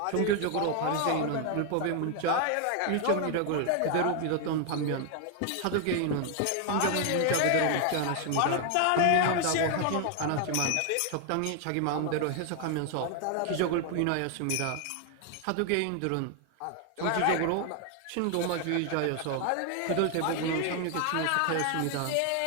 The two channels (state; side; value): different; both; correlation 0.00